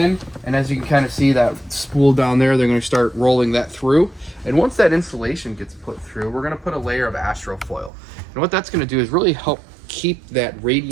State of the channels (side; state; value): left; drops out; at 7.9 s